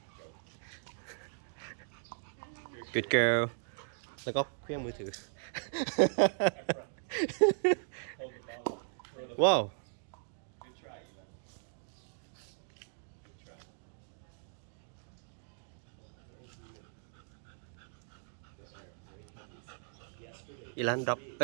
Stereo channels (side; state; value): left; silent; digital silence